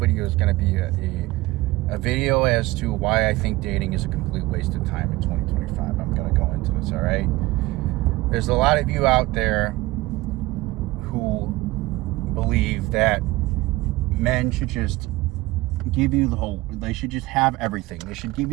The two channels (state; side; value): quieter; left; 19.7 dB